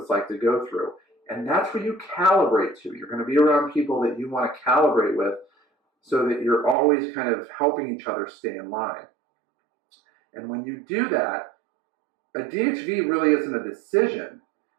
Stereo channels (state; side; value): drops out; left; at 6.8 s